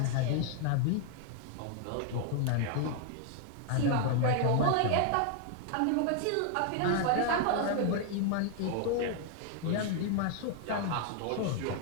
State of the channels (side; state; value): both; different; correlation 0.00